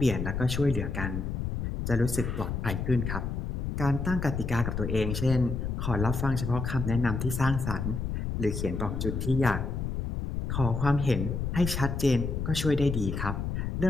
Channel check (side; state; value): left; noise; rumble, 3 dB below the sound